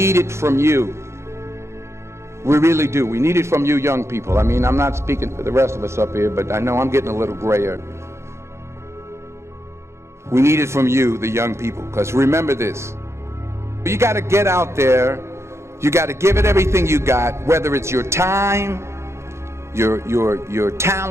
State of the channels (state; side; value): late; left; 0.13 ms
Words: it from you. We really do. We need it from you young people. I mean, I'm not speaking for the rest of us up here, but I know I'm getting a little grayer. We need it from you, the young people, because remember this. You got to get out there. You got to give it everything you got, whether it's your time, your